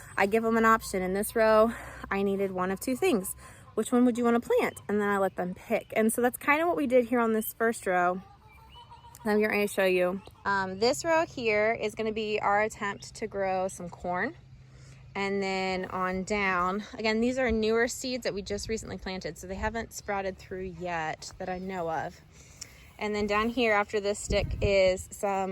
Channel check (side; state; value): both; identical; correlation 1.00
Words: I give them an option. In this row, I needed one of two things. Which one would you want to plant? And then I let them pick. And so that's kind of what we did here on this first row. I'm going to show you. This row here is going to be our attempt to grow some corn. And then on down, again, these are newer seeds that we just recently planted, so they haven't sprouted through yet that I know of. And then down here after this stick is